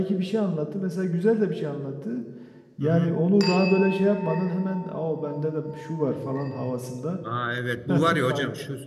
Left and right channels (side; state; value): both; identical; correlation 1.00